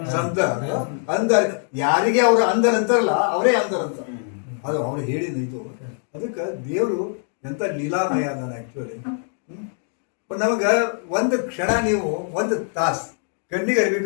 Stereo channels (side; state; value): right; silent; 58 dB below the other